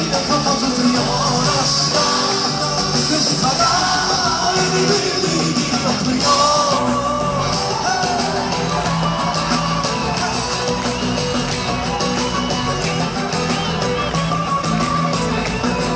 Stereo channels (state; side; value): identical; both; correlation 1.00